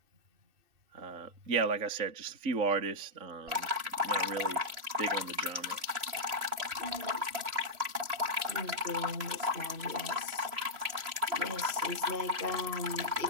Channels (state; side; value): late; left; 3.0 ms